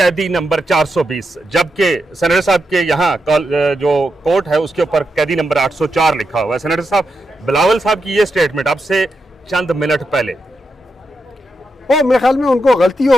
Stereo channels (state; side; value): normal; both; correlation 0.86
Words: नंबर 420, जबकि सेनेटर साहब के यहाँ जो कोर्ट है उसके ऊपर कैदी नंबर 804 लिखा हुआ है। सेनेटर साहब, बिलावल साहब की ये स्टेटमेंट अब से चंद मिनट पहले, मेरे ख्याल में उनको गलती